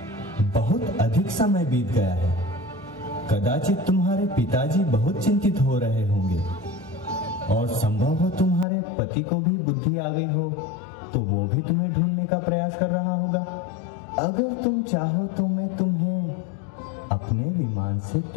बहुत अधिक समय बीत गया है। कदाचित तुम्हारे पिताजी बहुत चिंतित हो रहे होंगे और संभव हो तुम्हारे पति को भी बुद्धि आ गई हो, तो वो भी तुम्हें ढूंढने का प्रयास कर रहा होगा। अगर तुम चाहो तो मैं तुम्हें अपने विमान से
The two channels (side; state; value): right; drops out; at 8.7 s